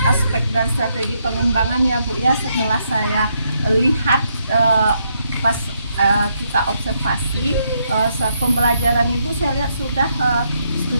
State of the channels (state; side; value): inverted; both; correlation -0.77